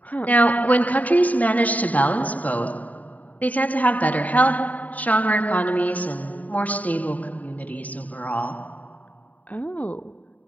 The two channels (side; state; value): right; late; 0.072 ms